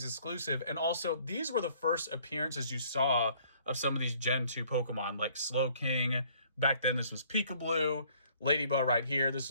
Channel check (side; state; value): both; inverted; correlation -0.60